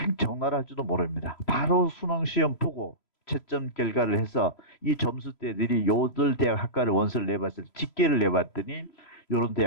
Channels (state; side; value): late; right; 3.0 ms